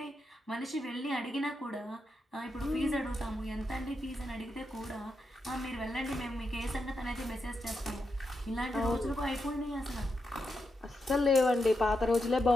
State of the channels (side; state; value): both; normal; correlation 0.85